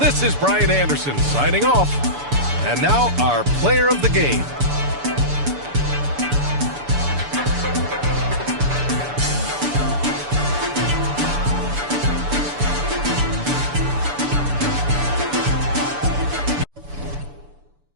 is Brian Anderson signing off. And now our player of the game.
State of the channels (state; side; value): late; left; 6.9 ms